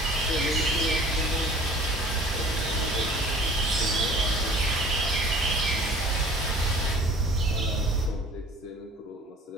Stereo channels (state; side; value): normal; both; correlation 0.48